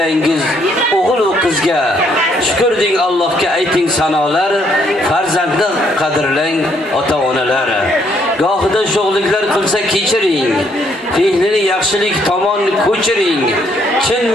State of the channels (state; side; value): normal; both; correlation 0.70